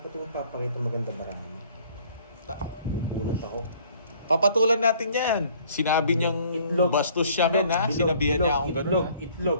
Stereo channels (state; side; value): inverted; both; correlation -0.58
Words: mong papakita maganda bara mo. May bunot ako. Papatulan natin yan. Sinabi niyang Itlog. bastos siya men ha. Bilog, Sinabihan niya bilog, akong itlog,